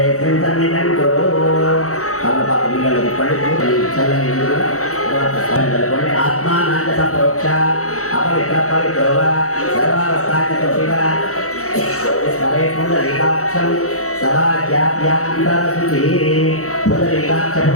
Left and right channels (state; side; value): late; right; 0.65 ms